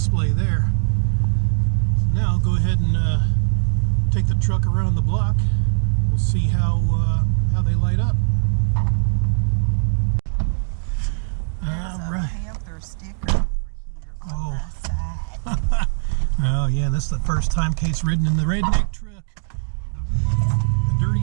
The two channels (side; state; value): left; silent; digital silence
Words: there. So now I'll go ahead and take the truck around the block. We'll see how they light up. All right. Oh. Oh yeah, this is the first time Kate's ridden in the redneck truck. The